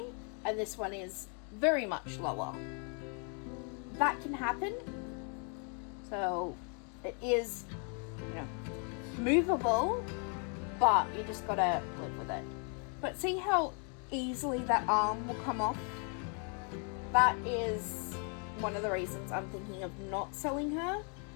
and this one is very much lower. That can happen, so it is, movable, but you just gotta live with it. But see how easily that arm will come off? That is one of the reasons I'm thinking of not selling her.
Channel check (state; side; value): quieter; right; 39.7 dB